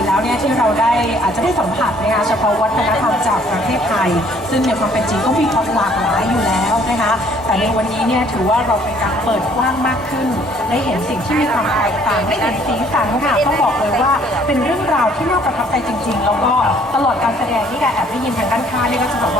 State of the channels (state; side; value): normal; both; correlation 0.60